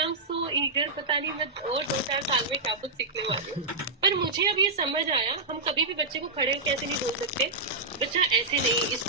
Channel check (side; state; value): left; quieter; 3.3 dB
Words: एम सो ईगर, पता नहीं मैं और 2-4 साल में क्या कुछ सीखने वाली हूँ. पर मुझे अब ये समझ आया, हम कभी भी बच्चे को खड़े होकर ऐसे नहीं बोल सकते बच्चा ऐसे नहीं,